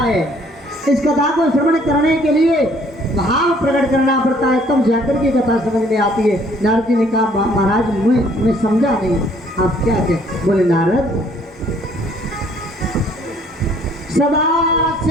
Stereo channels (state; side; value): normal; both; correlation 0.61